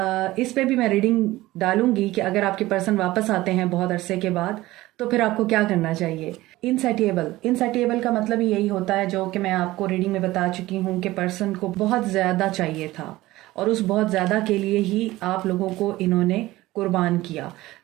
इस पे भी मैं रीडिंग डालूंगी कि अगर आपके पर्सन वापस आते हैं बहुत अरसे के बाद तो फिर आपको क्या करना चाहिए। इनसैटिएबल का मतलब ही यही होता है, जो कि मैं आपको रीडिंग में बता चुकी हूँ कि पर्सन को बहुत ज़्यादा चाहिए था और उस बहुत ज़्यादा के लिए ही आप लोगों को इन्होंने कुर्बान किया।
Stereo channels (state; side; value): quieter; left; 17.7 dB